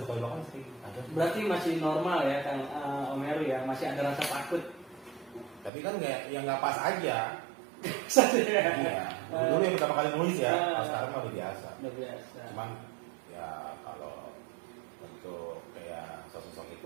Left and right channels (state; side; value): drops out; left; at 5.7 s